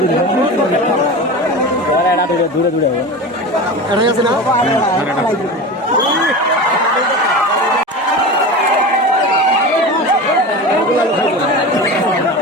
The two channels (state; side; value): normal; both; correlation 0.29